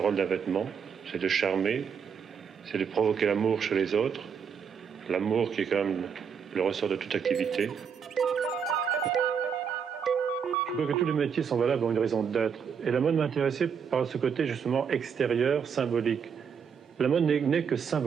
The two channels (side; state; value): left; quieter; 6.8 dB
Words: d'un vêtement, c'est de charmer, c'est de provoquer l'amour chez les autres, l'amour qui est quand même le ressort de toute activité. Je crois que tous les métiers sont valables pour une raison d'être. Et la mode m'intéressait par ce côté justement extérieur, symbolique. La mode n'est que